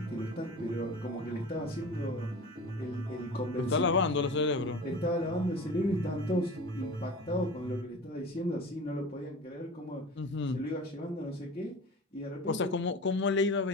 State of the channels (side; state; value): both; normal; correlation 0.36